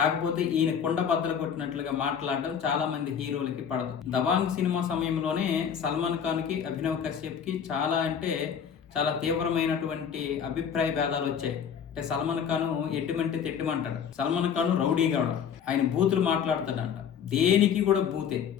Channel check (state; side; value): quieter; right; 7.7 dB